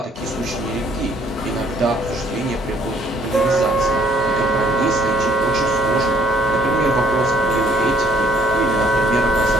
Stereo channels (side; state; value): both; normal; correlation 0.63